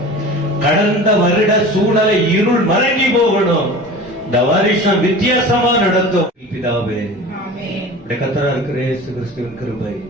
கடந்த வருட சூழலை இருள் மறைஞ்சி போகணும். இந்த வருஷம் வித்தியாசமா நடத்தும். பிதாவே, கர்த்தரா இருக்கிற இயேசு கிறிஸ்துவின் கிருபை,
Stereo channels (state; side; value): normal; both; correlation 0.37